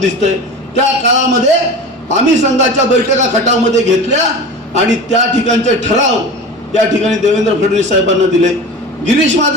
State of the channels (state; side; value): normal; both; correlation 0.32